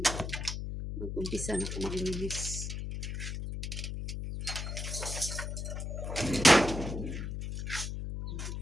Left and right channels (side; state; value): left; noise; hum, 4 dB below the sound